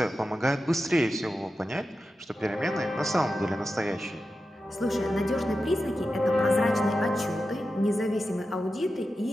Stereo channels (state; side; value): normal; both; correlation 0.91